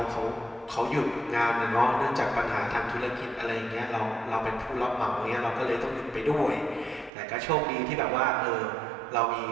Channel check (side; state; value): left; drops out; at 7.1 s